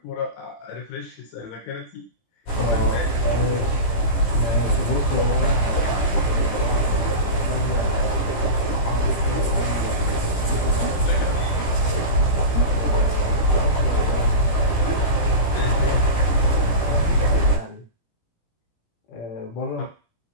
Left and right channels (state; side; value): late; right; 17 ms